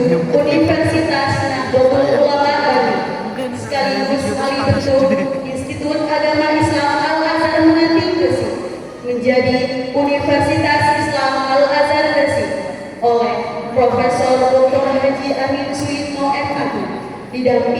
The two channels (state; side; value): identical; both; correlation 1.00